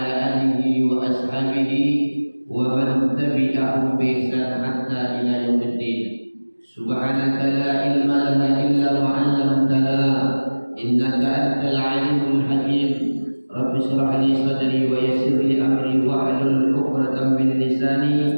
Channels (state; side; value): inverted; both; correlation -1.00